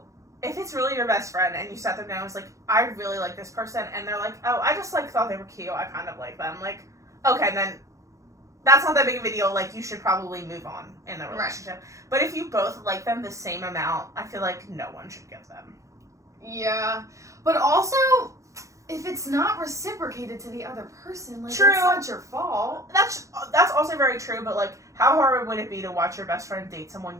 if it's really your best friend and you sat them down and was like, I really like this person, and they're like, oh, I just, like, thought they were cute, I kind of like them. Like, okay, then that's not that big of a deal. Like, you should probably move on in the relationship. Right. But if you both like them the same amount, I feel like no one should give them. Yeah. But also, if it's not reciprocated to the other person, like, True. it's not your fault. That's also very true, but, like, how hard would it be to watch your best friend date someone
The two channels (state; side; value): late; left; 0.15 ms